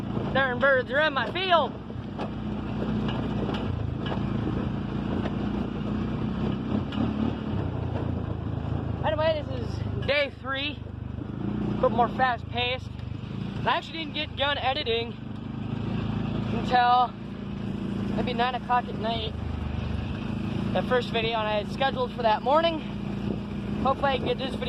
Darn birds are in my field. Anyway, this is day 3, a bit more fast paced. I actually didn't get done editing until maybe 9 o'clock at night. The first video and I had scheduled for that morning. Hopefully I can get this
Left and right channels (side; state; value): both; identical; correlation 1.00